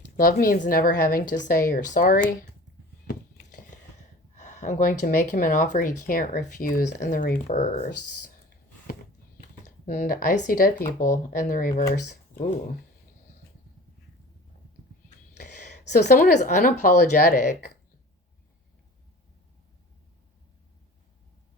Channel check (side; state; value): both; normal; correlation 0.41